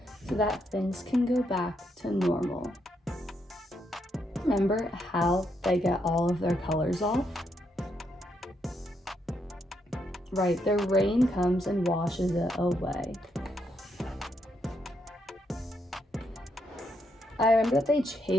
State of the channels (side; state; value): both; normal; correlation 0.78